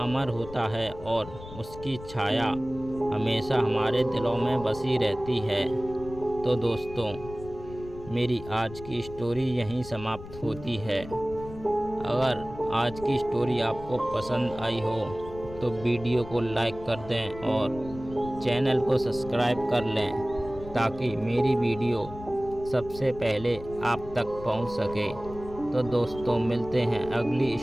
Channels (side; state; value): left; noise; rumble, 14 dB below the sound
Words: अमर होता है और उसकी छाया हमेशा हमारे दिलों में बसी रहती है। तो दोस्तों, मेरी आज की स्टोरी यहीं समाप्त होती है। अगर आज की स्टोरी आपको पसंद आई हो तो वीडियो को लाइक कर दें और चैनल को सब्सक्राइब कर लें, ताकि मेरी वीडियो सबसे पहले आप तक पहुंच सके। तो दोस्तों, मिलते हैं अगली